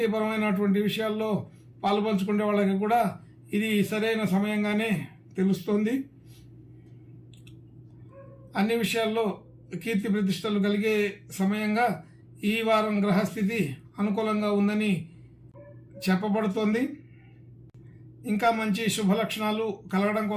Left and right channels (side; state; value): both; identical; correlation 1.00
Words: విషయాల్లో పాలుపంచుకునే వాళ్ళకి కూడా ఇది సరైన సమయంగానే తెలుస్తుంది. అన్ని విషయాల్లో కీర్తి ప్రతిష్టలు కలిగే సమయంగా ఈ వారం గ్రహస్థితి అనుకూలంగా ఉందని చెప్పబడుతోంది. ఇంకా మంచి శుభ లక్షణాలు కలగడం